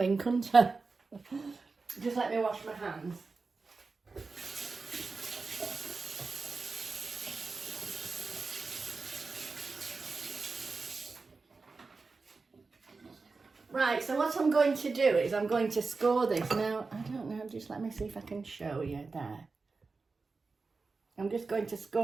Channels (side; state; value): left; quieter; 4.2 dB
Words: couldn't I? Just let me wash my hands. Right, so what I'm going to do is I'm going to score this. Now, I don't know, just let me see if I can show you there. I'm just going to